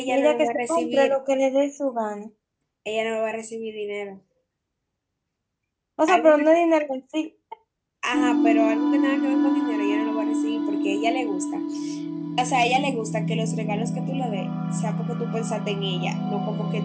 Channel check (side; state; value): both; identical; correlation 1.00